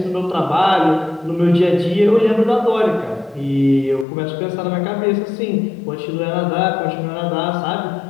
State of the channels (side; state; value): right; drops out; at 4.0 s